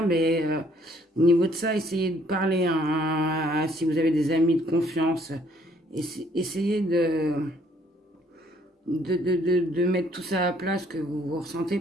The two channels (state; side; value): normal; both; correlation 0.64